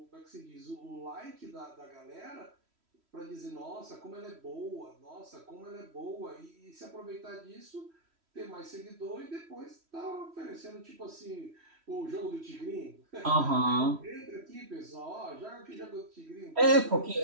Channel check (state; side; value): late; left; 3.1 ms